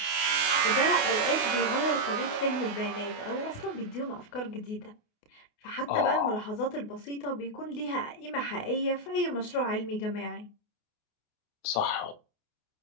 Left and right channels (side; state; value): right; late; 28 ms